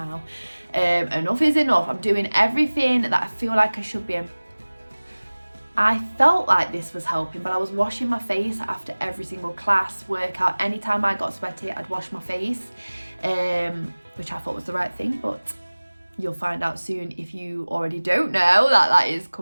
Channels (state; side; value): inverted; both; correlation -1.00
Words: Enough is enough. I'm doing everything that I feel like I should be. I felt like this was helping, but I was washing my face after every single class, workout. Anytime I got sweaty, I'd wash my face, which I thought was the right thing, but you'll find out soon if you already don't know that is